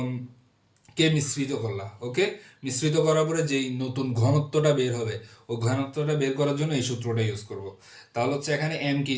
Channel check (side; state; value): both; identical; correlation 1.00